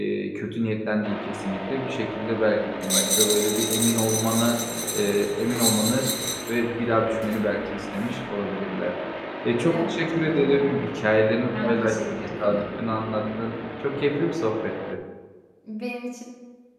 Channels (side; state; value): both; identical; correlation 1.00